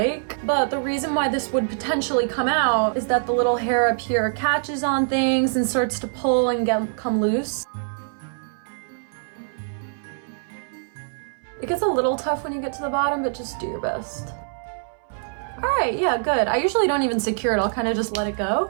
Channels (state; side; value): silent; left; 61 dB below the other